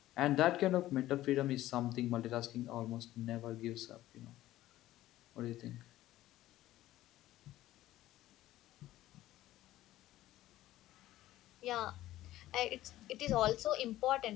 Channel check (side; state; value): right; quieter; 15.0 dB